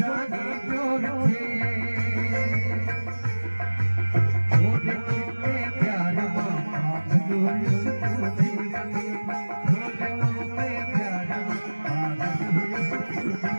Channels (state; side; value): inverted; both; correlation -1.00